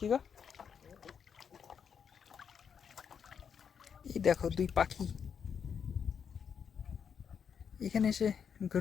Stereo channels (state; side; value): quieter; right; 7.1 dB